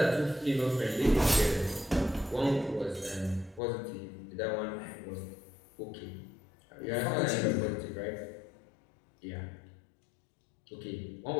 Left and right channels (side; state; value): right; drops out; at 3.6 s